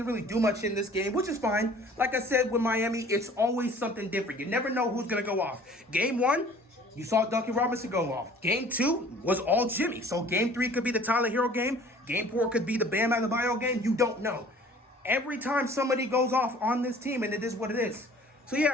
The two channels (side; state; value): both; normal; correlation 0.50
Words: really do much in this game, which is fine. Like I said, with Miami, it's always something different. You never know who's going to go off. Game 1, you saw Duncan Robinson go off. Game 2 was all Jimmy. So Game 3 could be the Tyler Hero game. Game 4 could be the Bam Adebayo game. You don't know. Every time somebody goes off on this team, and it is what it is. So